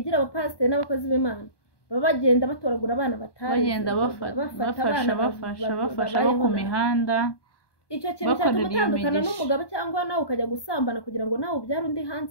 abapasiteri n'abakozi b'Imana baba bagenda batoragura abana bagenda bafasha bo ku mihanda icyo kintu cyatuma utandukana n'umugabo cyangwa nawe ukajya gusambana kugira ngo nawe ubyare undi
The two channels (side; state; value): right; late; 1.2 ms